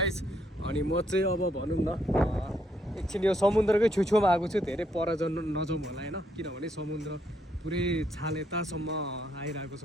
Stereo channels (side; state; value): both; normal; correlation 0.73